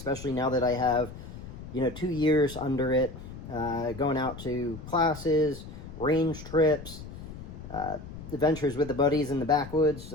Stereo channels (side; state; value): left; noise; rumble, 12 dB below the sound